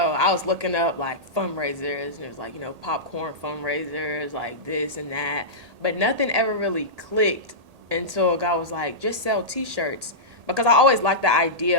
I was looking up like fundraisers, and it was like, popcorn fundraisers, like this and that. But nothing ever really clicked until God was like, just sell t-shirts. Because I always liked the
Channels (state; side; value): late; left; 1.8 ms